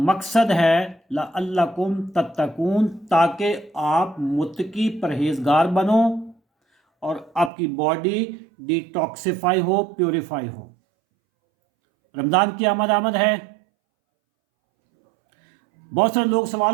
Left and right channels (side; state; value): left; drops out; at 7.5 s